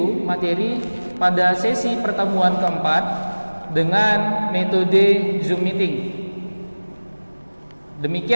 materi pada sesi pertemuan keempat dengan metode Zoom meeting.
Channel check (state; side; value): inverted; both; correlation -1.00